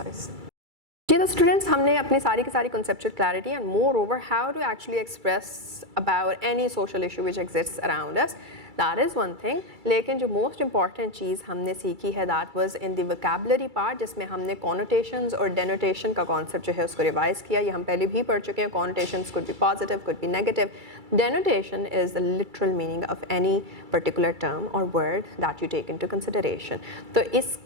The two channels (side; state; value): left; late; 2.3 ms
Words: Okay, the students, हमने अपनी सारी की सारी conceptual clarity and moreover how to actually express about any social issue which exists around us. That is one thing. लेकिन जो most important चीज़ हमने सीखी है that was in the vocabulary part, जिसमें हमने connotations और denotation का concept जो है उसको revise किया. ये हम पहले भी पढ़ चुके हैं. Connotations could be positive, could be negative. Denotation is the literal meaning of any particular term or word that you take into consideration. तो